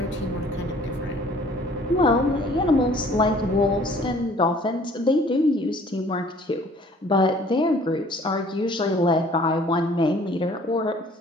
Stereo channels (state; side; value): normal; both; correlation 0.54